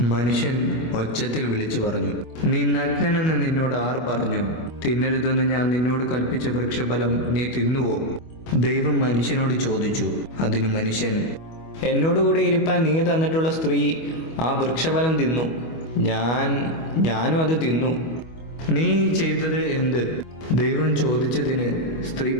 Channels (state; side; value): late; right; 25 ms